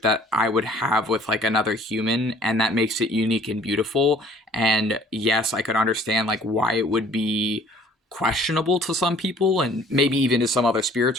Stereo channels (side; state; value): both; normal; correlation 0.54